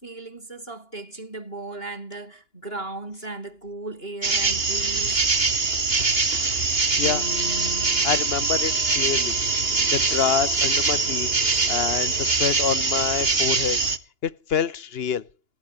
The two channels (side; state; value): right; late; 2.9 ms